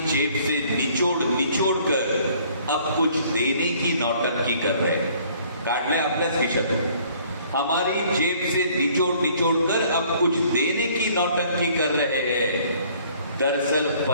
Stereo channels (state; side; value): inverted; both; correlation -0.58